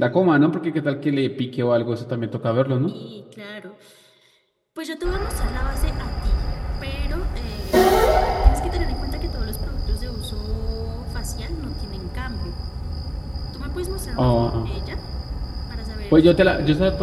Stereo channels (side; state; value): both; identical; correlation 1.00